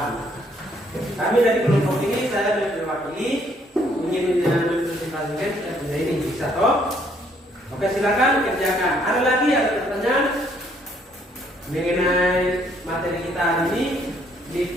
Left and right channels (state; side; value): normal; both; correlation 0.67